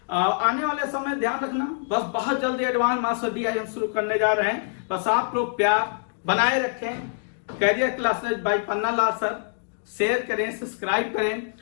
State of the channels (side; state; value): right; silent; digital silence